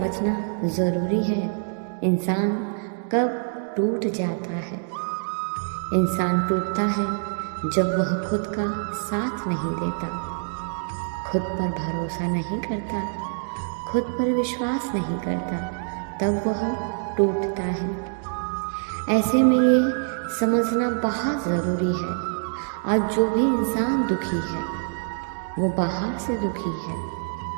ज़रूरी है, इंसान कब टूट जाता है। इंसान टूटता है जब वह खुद का साथ नहीं देता, खुद पर भरोसा नहीं करता, खुद पर विश्वास नहीं करता, तब वह टूटता है। ऐसे में ये समझना बहुत ज़रूरी है, आज जो भी इंसान दुखी है वो बाहर से दुखी है,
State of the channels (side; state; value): left; silent; digital silence